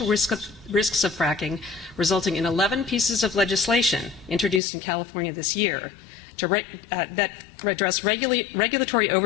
risks of fracking, resulting in 11 pieces of legislation introduced in California this year that address regulatory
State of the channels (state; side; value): drops out; right; at 4.6 s